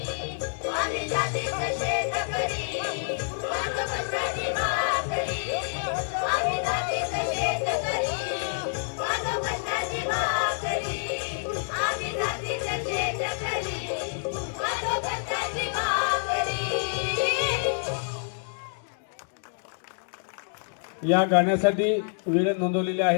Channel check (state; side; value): silent; right; digital silence